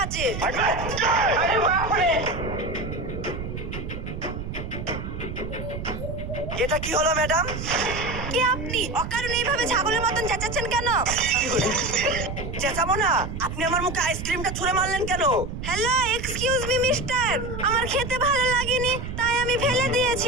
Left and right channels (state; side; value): noise; right; rumble, 7 dB below the sound